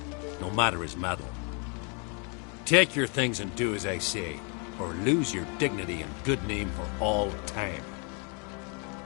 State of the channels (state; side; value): quieter; right; 36.0 dB